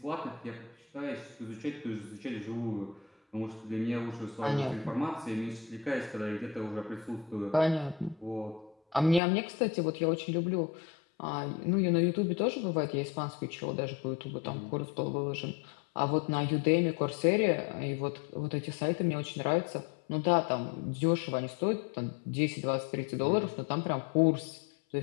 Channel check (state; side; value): drops out; right; at 9.2 s